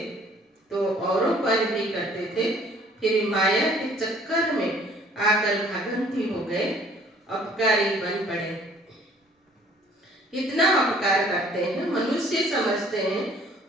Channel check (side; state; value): both; normal; correlation 0.56